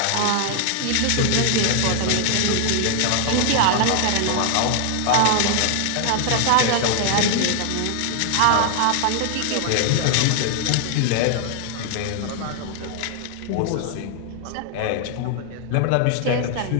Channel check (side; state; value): both; different; correlation 0.00